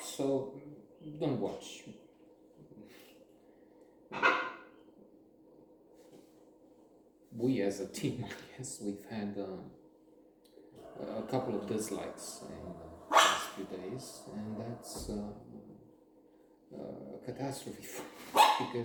So don't watch. We as a team, I guess, we've had a couple of dislikes in the past few days, and that's a catastrophe for us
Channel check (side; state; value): both; identical; correlation 1.00